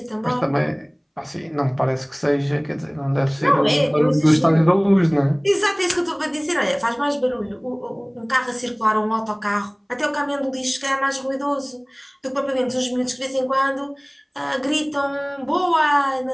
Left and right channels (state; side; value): identical; both; correlation 1.00